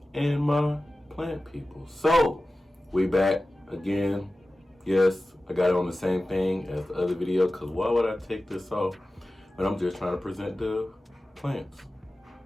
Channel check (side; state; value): both; normal; correlation 0.95